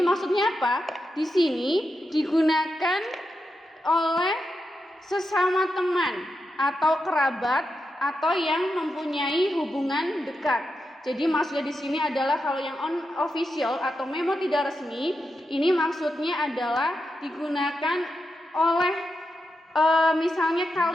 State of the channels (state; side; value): normal; both; correlation 0.87